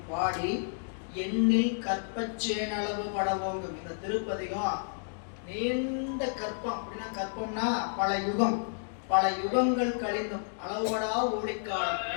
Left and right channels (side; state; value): right; silent; digital silence